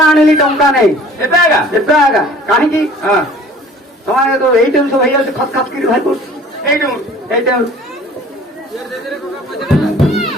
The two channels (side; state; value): both; normal; correlation 0.49